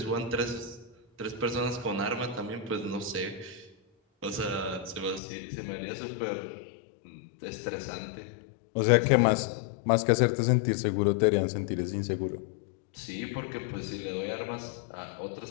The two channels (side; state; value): right; drops out; at 5.2 s